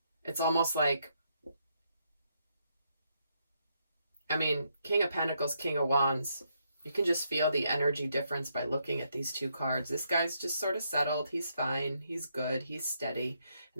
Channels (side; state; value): both; inverted; correlation -0.76